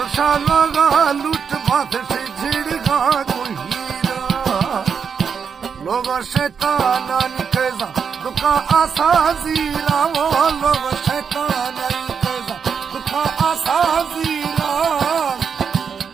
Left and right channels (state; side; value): quieter; left; 6.5 dB